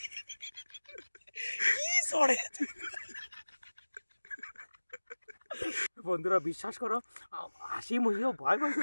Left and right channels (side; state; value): both; inverted; correlation -1.00